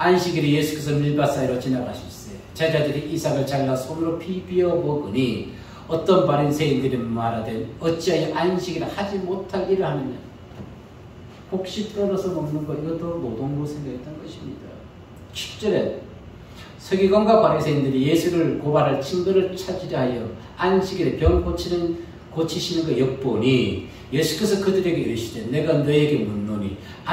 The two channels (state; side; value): identical; both; correlation 1.00